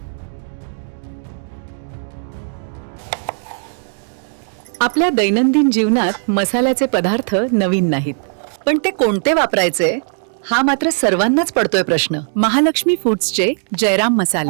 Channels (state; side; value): silent; left; 64 dB below the other